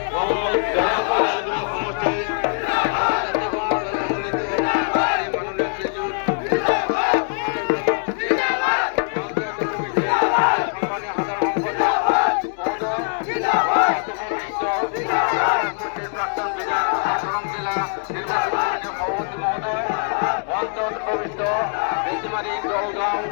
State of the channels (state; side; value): silent; right; 58 dB below the other